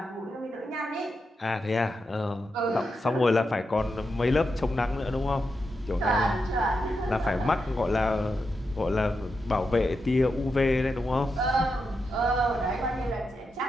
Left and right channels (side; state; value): both; normal; correlation 0.86